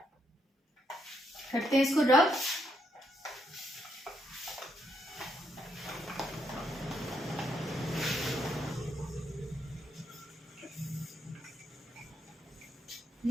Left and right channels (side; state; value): both; normal; correlation 0.76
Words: करते हैं इसको रब।